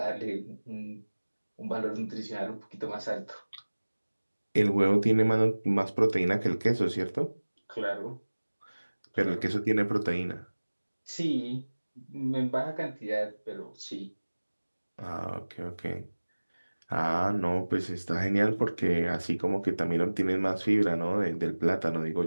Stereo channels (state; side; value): inverted; both; correlation -1.00